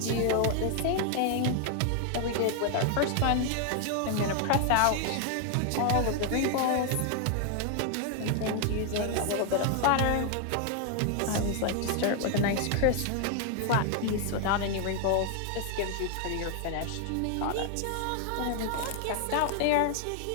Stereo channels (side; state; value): both; different; correlation 0.00